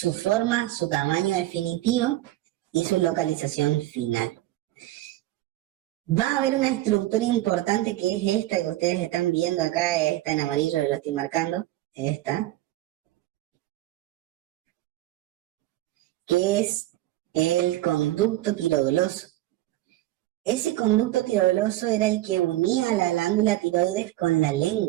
forma, su tamaño definitivo y su localización final. Va a haber una estructura importante que es esta que ustedes están viendo acá, esta en amarillo, lo estoy marcando, esta, que es el conducto tiroidoso. Ese conducto tiroidoso era el que unía la glándula tiroides con la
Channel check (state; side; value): quieter; left; 15.9 dB